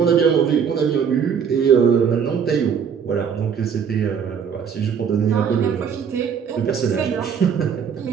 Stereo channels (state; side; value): quieter; left; 7.2 dB